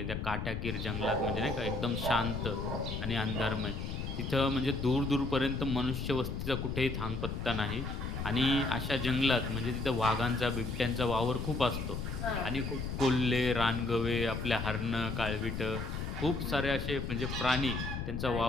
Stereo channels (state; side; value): noise; left; rumble, 4 dB below the sound